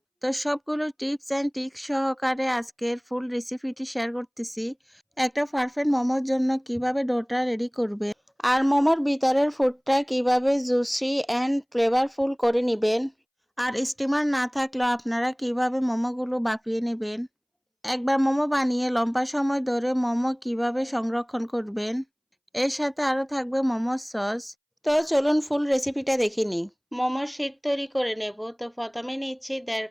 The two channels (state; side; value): identical; both; correlation 1.00